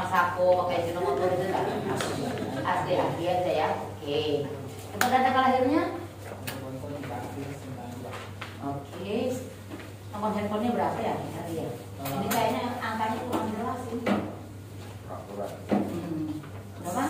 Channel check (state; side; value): identical; both; correlation 1.00